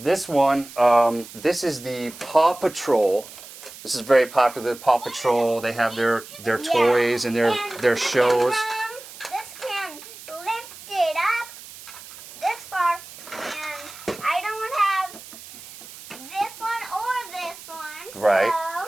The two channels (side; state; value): right; noise; hiss, 16 dB below the sound